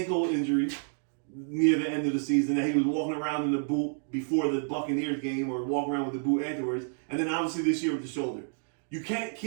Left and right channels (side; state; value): left; silent; digital silence